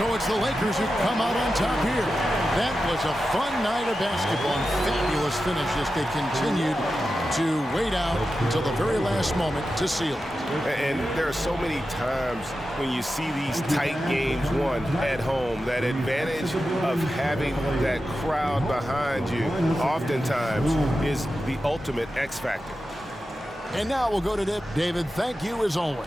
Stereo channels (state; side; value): normal; both; correlation 0.91